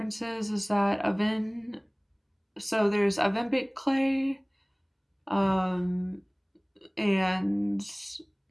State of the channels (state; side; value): identical; both; correlation 1.00